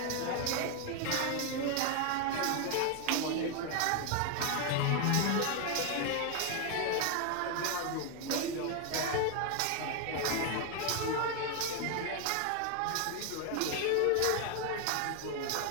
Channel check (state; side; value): different; both; correlation 0.01